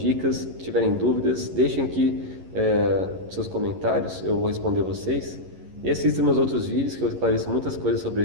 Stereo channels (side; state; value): left; late; 11 ms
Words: tiverem dúvidas, deixem aqui seus comentários, eu vou responder vocês. E assistam meus outros vídeos que eu esclareço muitas coisas sobre